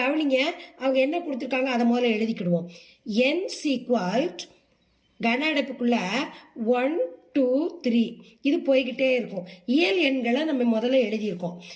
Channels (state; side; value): identical; both; correlation 1.00